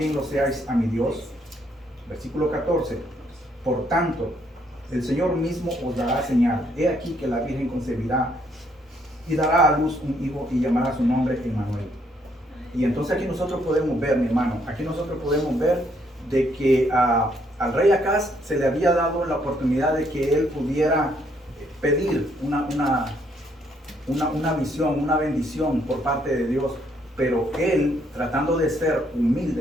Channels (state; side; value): normal; both; correlation 0.70